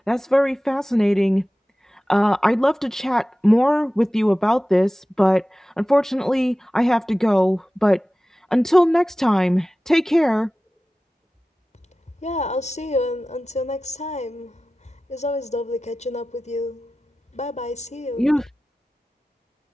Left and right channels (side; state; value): both; normal; correlation 0.96